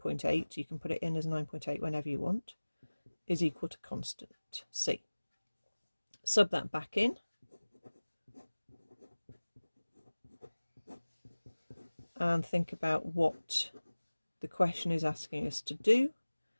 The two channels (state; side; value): inverted; both; correlation -1.00